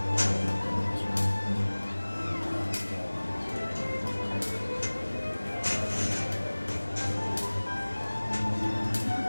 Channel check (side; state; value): both; inverted; correlation -1.00